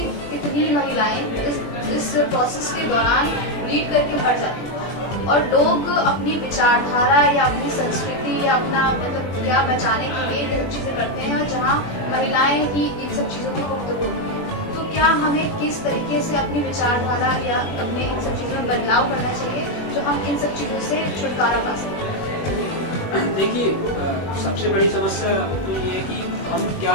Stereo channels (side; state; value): right; late; 21 ms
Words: कितनी महिलाएं इस प्रोसेस के दौरान ब्लीड करके मर जाती हैं और लोग अपनी विचारधारा या अपनी संस्कृति या अपना मतलब क्या बचाने के लिए ये सब चीजें करते हैं और जहाँ महिलाएं ही इन सब चीजों की गुफ्तगू होती हैं। तो क्या हमें किस तरीके से अपनी विचारधारा या अपने इन सब चीजों में बदलाव करना चाहिए जो हम इन सब चीजों से छुटकारा पा सकें? देखिए, सबसे बड़ी समस्या तो ये है कि हम क्या